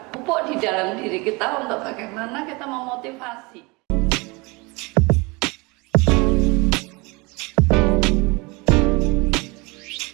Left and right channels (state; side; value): quieter; left; 26.3 dB